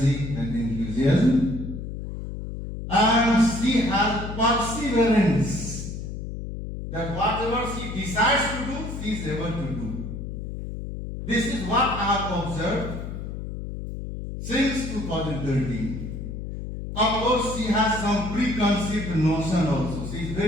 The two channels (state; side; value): noise; left; hum, 7 dB below the sound